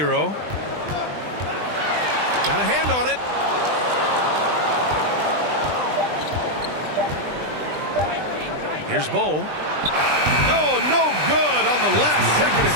Got a hand on it. Here's Bull. Oh, no good on the last second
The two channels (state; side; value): late; left; 20 ms